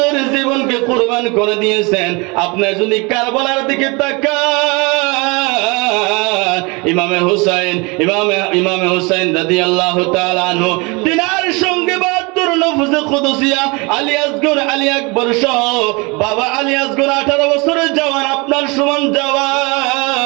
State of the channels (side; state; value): left; quieter; 27.8 dB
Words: জীবনকে কোরবান করে দিয়েছেন। আপনি যদি কারবালার দিকে তাকান, ইমামে হুসাইন রাদিয়াল্লাহু তাআলা আনহু, তিনার সঙ্গে 72 নফসে কুদসিয়া আলী আসগর, আলী আকবর সহ বাবা আলী আসগর 18 বছরের জওয়ান, আপনার সমান জওয়ান।